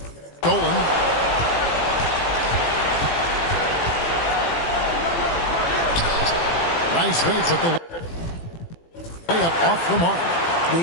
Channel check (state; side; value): late; right; 18 ms